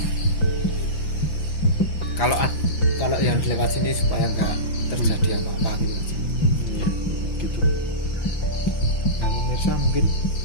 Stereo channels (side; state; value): right; late; 5.8 ms